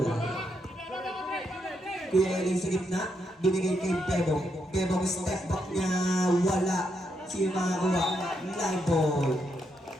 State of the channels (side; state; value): both; normal; correlation 0.80